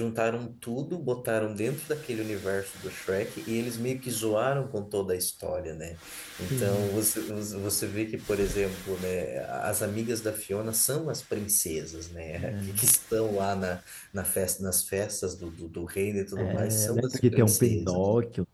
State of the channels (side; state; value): both; identical; correlation 1.00